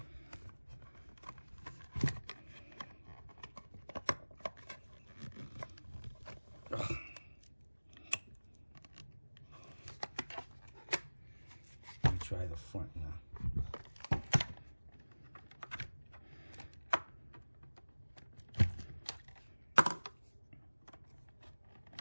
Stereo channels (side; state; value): both; inverted; correlation -1.00